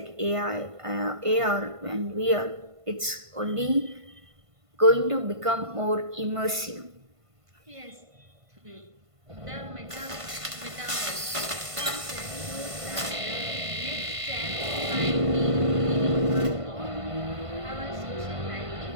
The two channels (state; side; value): late; left; 1.5 ms